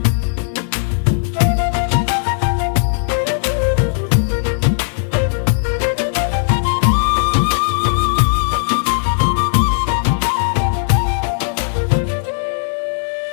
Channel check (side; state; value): right; silent; digital silence